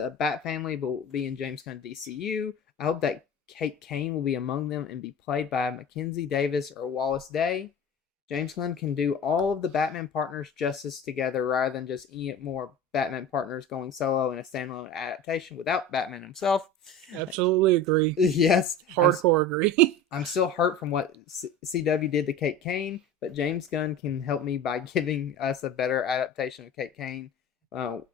Bat family will be in James Gunn DCU, I hope that Kate Kane will be among them and be played by Mackenzie Davis or Wallace Day. James Gunn can do all of the Batman partners justice together rather than just any more Batman partners going solo in a standalone adaptation without Batman himself. Absolutely agree. Yes. Hardcore agree. I'm still hurt from what CW did to Kate Kane, but James Gunn can help me by giving us a better adaptation of Kate Kane,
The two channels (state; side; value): normal; both; correlation 0.35